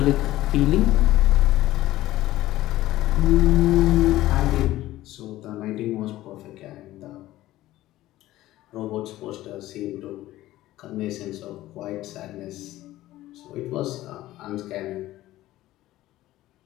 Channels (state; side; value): quieter; right; 15.7 dB